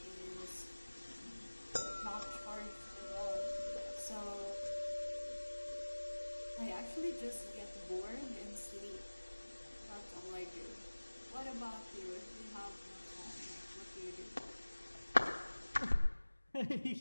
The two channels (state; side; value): inverted; both; correlation -1.00